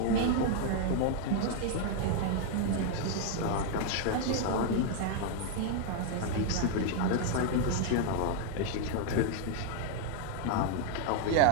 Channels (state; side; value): different; both; correlation 0.00